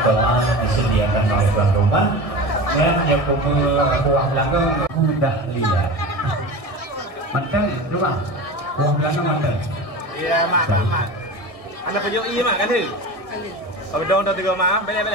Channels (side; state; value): right; late; 1.6 ms